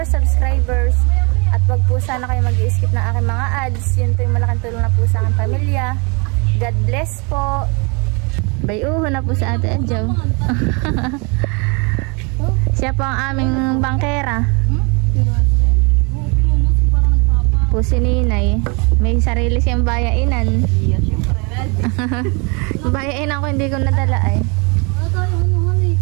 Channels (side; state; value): left; quieter; 31.7 dB